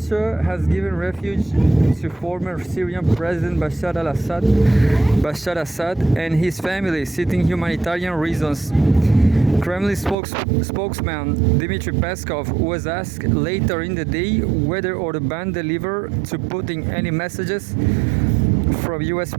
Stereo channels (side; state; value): left; drops out; at 10.2 s